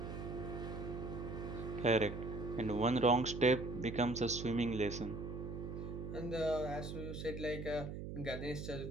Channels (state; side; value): noise; right; hum, 7 dB below the sound